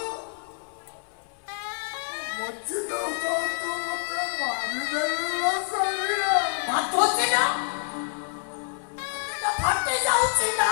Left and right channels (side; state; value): right; silent; 60 dB below the other